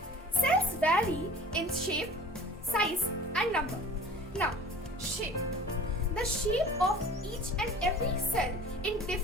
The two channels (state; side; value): normal; both; correlation 0.44